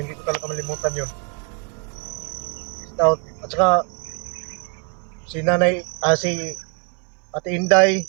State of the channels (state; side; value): quieter; left; 35.1 dB